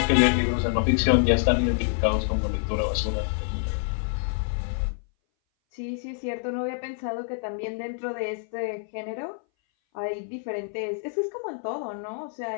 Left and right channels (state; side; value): silent; right; 59 dB below the other